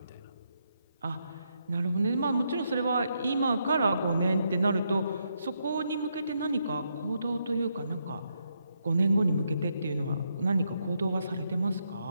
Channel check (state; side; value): inverted; both; correlation -0.79